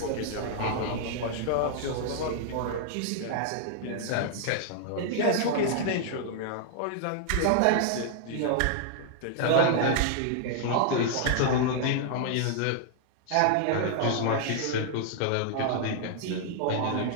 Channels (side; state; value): both; different; correlation -0.01